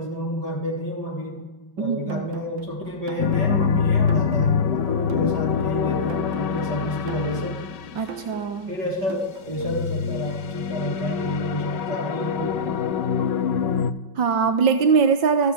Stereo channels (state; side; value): late; left; 5.3 ms